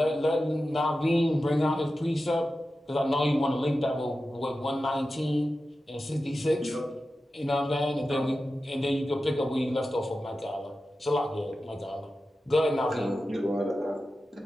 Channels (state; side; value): normal; both; correlation 0.93